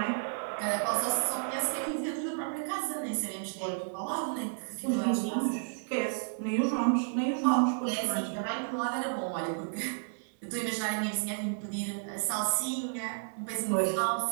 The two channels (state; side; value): silent; left; 56 dB below the other